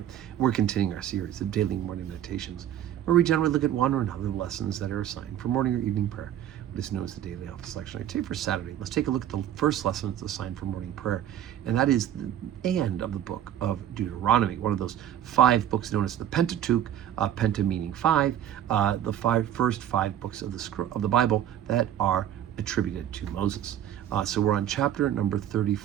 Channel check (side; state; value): left; quieter; 10.9 dB